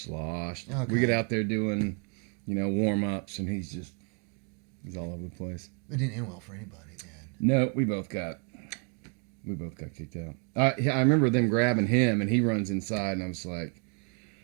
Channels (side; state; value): left; quieter; 37.9 dB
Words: Okay. We get out there doing, warm-ups, and he's all over the place. It didn't end well for anybody then. No, we both got We both got kicked out. I remember them grabbing him, and he runs inside, and I was like,